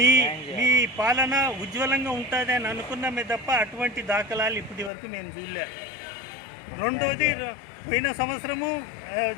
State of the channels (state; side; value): drops out; right; at 4.9 s